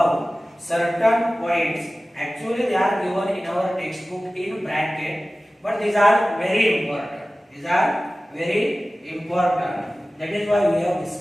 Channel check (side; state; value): both; normal; correlation 0.96